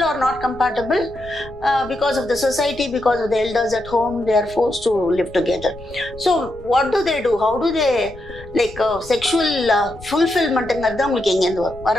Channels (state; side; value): noise; left; rumble, 18 dB below the sound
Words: or not compatible, because of the society, because of the elders at home, they are forced to live together. So what do? How do they, like sexual fulfillment engadha ungalku enga endu